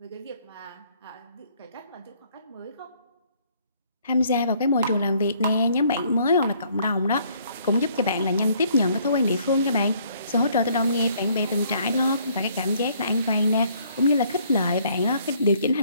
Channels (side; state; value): both; inverted; correlation -0.64